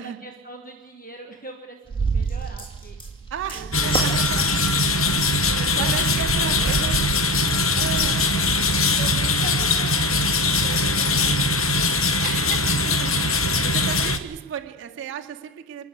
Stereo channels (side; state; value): both; normal; correlation 0.24